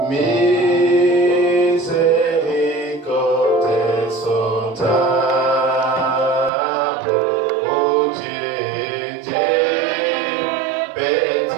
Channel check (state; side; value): drops out; left; at 6.5 s